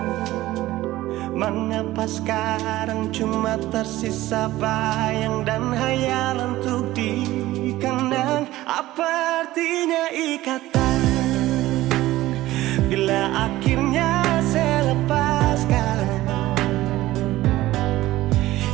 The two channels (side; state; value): left; quieter; 16.5 dB